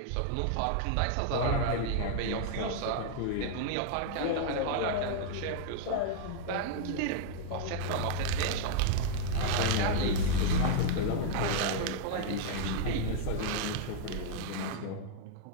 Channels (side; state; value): both; different; correlation -0.01